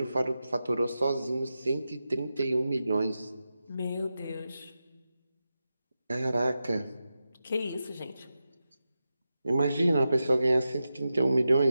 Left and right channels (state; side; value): inverted; both; correlation -0.91